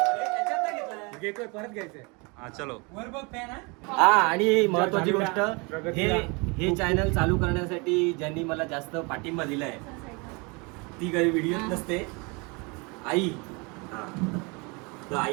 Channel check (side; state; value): left; quieter; 29.4 dB